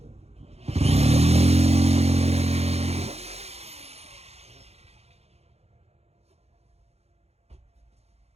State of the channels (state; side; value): late; left; 0.30 ms